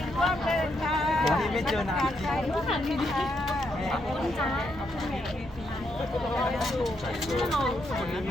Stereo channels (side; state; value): both; normal; correlation 0.78